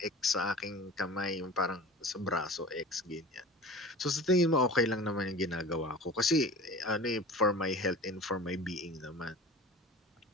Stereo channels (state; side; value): normal; both; correlation 0.38